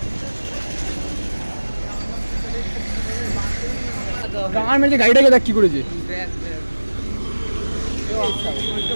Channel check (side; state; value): both; inverted; correlation -1.00